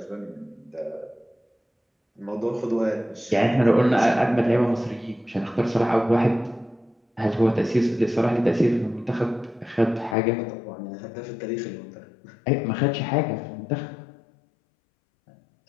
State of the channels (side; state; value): right; drops out; at 10.2 s